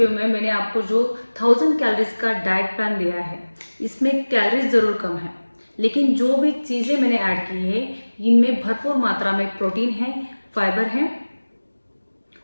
में मैंने आपको जो 1000 कैलोरीज का डाइट प्लान दिया है, इसमें कैलोरीज ज़रूर कम है, लेकिन जो भी चीज़ें मैंने ऐड की है इनमें भरपूर मात्रा में प्रोटीन है, फाइबर है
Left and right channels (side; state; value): both; inverted; correlation -1.00